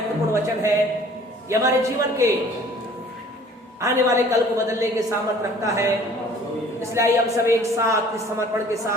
वचन है। ये हमारे जीवन के आने वाले कल को बदलने के सामर्थ्य रखता है। इसलिए आइए हम सब एक साथ इस समर्पण के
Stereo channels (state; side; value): normal; both; correlation 0.52